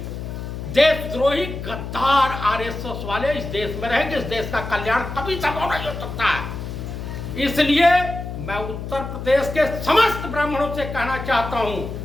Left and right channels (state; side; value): noise; left; hum, 7 dB below the sound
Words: देशद्रोही गद्दार आरएसएस वाले इस देश में रहेंगे, इस देश का कल्याण कभी संभव नहीं हो सकता है। इसलिए मैं उत्तर प्रदेश के समस्त ब्राह्मणों से कहना चाहता हूं